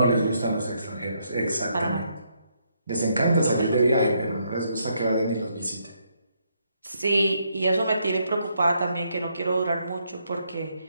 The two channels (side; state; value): both; inverted; correlation -0.75